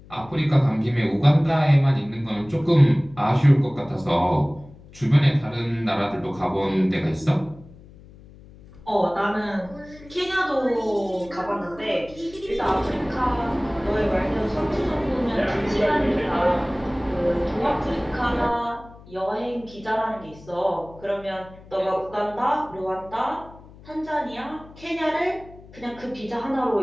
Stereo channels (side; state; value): left; noise; hum, 21 dB below the sound